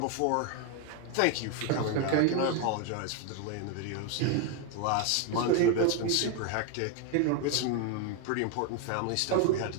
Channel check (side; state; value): both; different; correlation 0.01